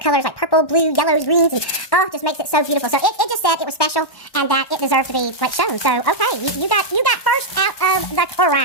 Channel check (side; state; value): right; late; 1.1 ms